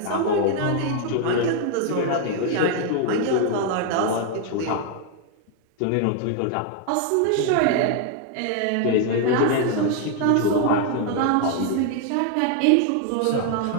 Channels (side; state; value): both; different; correlation 0.00